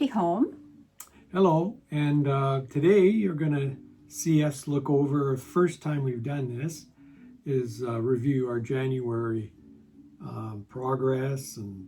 Home. Hello, and today you're going to see us look over, first time we've done this, is review our January progress, and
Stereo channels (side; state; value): both; identical; correlation 1.00